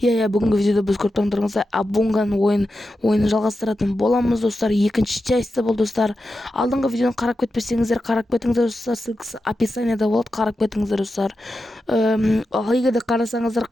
Бүгінгі видеода біз көріп тұрғандарыңыздай Абунган ойынын жалғастыратын боламыз достар. Екінші частьта бұл достар. Алдыңғы видеоны қарап кетпесеңіздер, қарап кетіңіздер достар. Ссылкасы описаниеда болады, қарап кетіңіздер достар. Егер де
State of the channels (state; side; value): normal; both; correlation 0.90